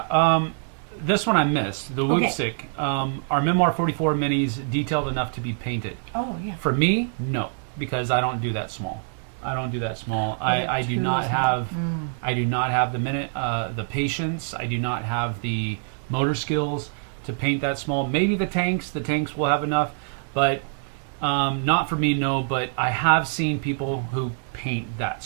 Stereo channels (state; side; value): silent; left; digital silence